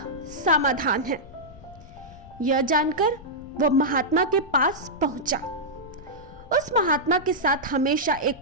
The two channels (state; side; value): noise; left; rumble, 20 dB below the sound